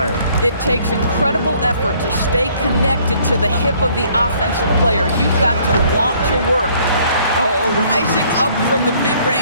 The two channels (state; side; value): inverted; both; correlation -0.61